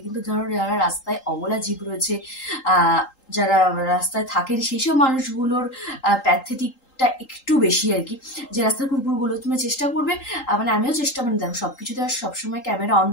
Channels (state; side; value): late; right; 3.8 ms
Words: কিন্তু ধরো যারা রাস্তায় অবলা জীব রয়েছে, যারা রাস্তায় থাকেন, সেই সব মানুষগুলোর প্যাথেটিকটা একটু বেশি আর কি। যে রাস্তার কুকুরগুলো তুমি চেষ্টা করবে, মানে আমিও চেষ্টা, মানে দেখো সবকিছুতে আর সবসময় ক্যামেরা অন